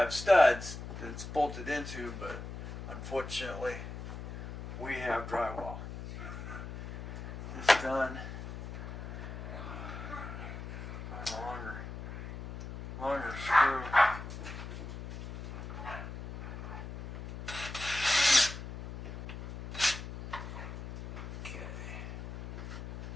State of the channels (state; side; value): noise; left; hum, 8 dB below the sound